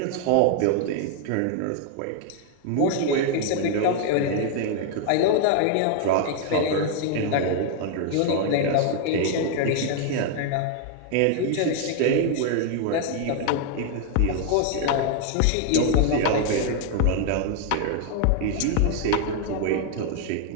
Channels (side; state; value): both; different; correlation 0.00